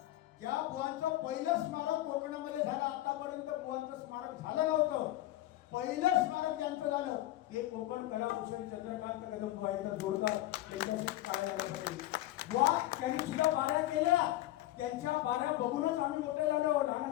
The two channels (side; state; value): right; quieter; 15.7 dB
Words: ज्या बुवांचं पहिलं स्मारक कोकणामध्ये झालं, आतापर्यंत बुवांचं स्मारक झालं नव्हतं. पहिलं स्मारक ज्यांचं झालं हे कोकण कलाभूषण चंद्रकांत कदम बुवा इथं जोडतात. त्यांच्याशी काय झाल्यासाठी बुवा त्यांनी सुद्धा बाऱ्या केल्या. त्यांच्या बाऱ्या बघूनच आम्ही मोठे झालो,